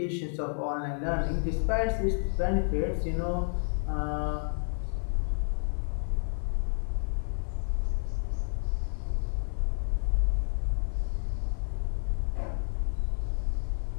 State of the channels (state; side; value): silent; right; 56 dB below the other